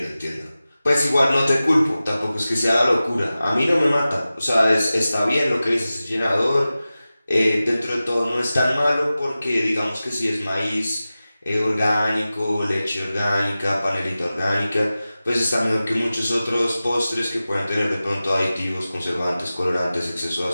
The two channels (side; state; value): both; inverted; correlation -0.96